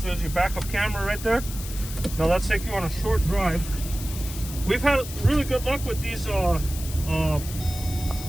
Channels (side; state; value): left; noise; hiss, 11 dB below the sound